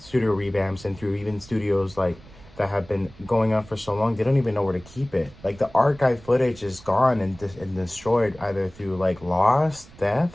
revamps, and through even studios like that have been going on for so long, they don't even know where to keep it. Like, the archive footage is gone and destroyed either through like loss,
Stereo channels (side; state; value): right; noise; rumble, 22 dB below the sound